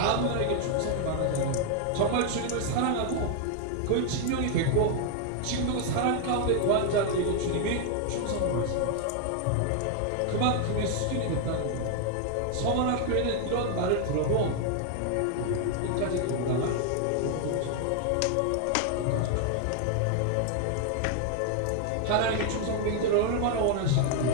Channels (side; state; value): both; different; correlation 0.00